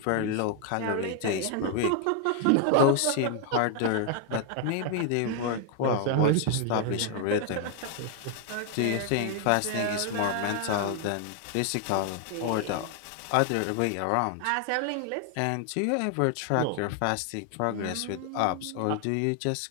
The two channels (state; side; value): different; both; correlation 0.00